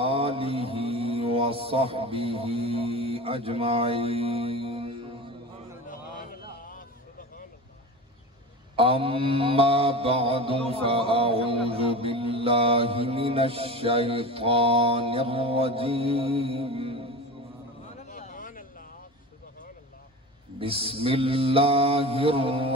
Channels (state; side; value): normal; both; correlation 0.30